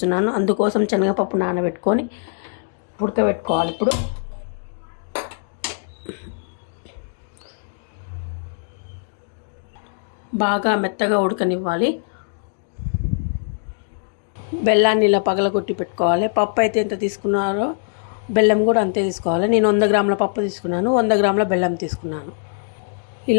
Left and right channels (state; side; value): silent; right; digital silence